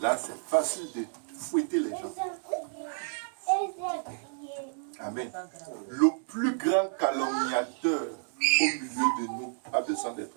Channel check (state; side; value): silent; left; digital silence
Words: c'est facile de fouetter les gens. Amen. Le plus grand calomniateur au milieu de nous a besoin d'être